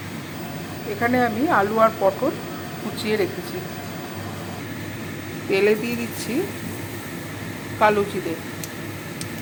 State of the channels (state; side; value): identical; both; correlation 1.00